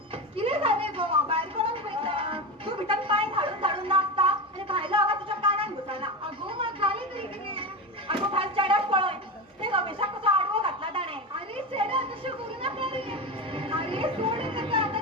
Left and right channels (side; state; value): both; normal; correlation 0.21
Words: कितें जालें गो भायर कोणाक पळयता तू भितर पांय धाडून धाडून नाचता आनी भायलो आवाज तुज्या कानान घुसना अगो म्हाका जालें तरी कितें अगो भायर चेड्याक पळय ते रमेशाक कसो आडवो घातला ताणें अरे चेड्या तशें करूं नाका रे अरे सोड ताका